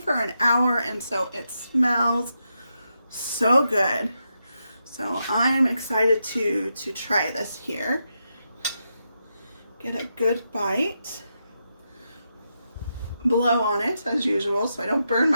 for an hour, and so it smells so good. So I'm excited to try this here. Get a good bite. Blow on it as usual so I don't burn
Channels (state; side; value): inverted; both; correlation -0.85